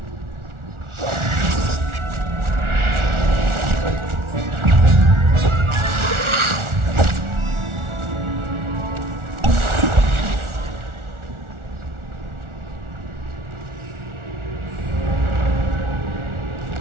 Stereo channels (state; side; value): late; left; 1.4 ms